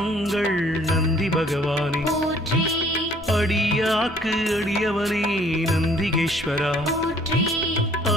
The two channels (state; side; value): normal; both; correlation 0.58